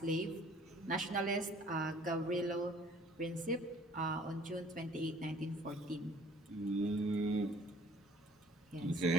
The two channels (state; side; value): normal; both; correlation 0.53